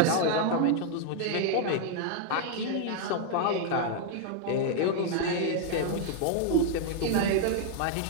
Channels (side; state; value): both; different; correlation 0.00